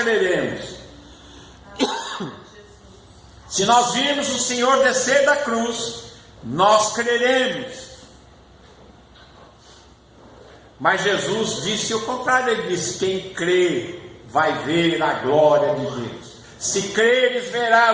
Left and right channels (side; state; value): both; identical; correlation 1.00